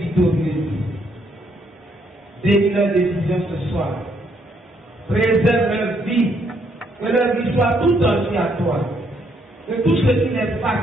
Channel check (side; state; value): both; normal; correlation 0.71